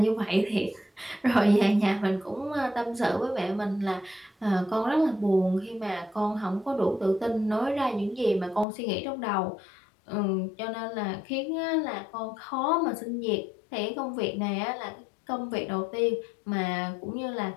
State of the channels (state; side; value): drops out; right; at 8.7 s